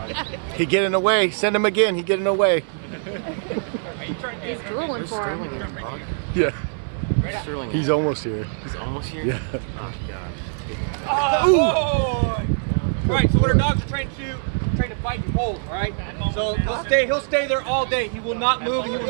He getting away. Send him again. He getting away. He's drooling for him. Yeah. Sterling. He's almost here. He's almost here. Yeah. Oh gosh. Oh, boy. All right, so what our dogs are trained to fight and hold, all right? So he'll stay there all day. He will not move, he will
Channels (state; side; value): silent; left; 63 dB below the other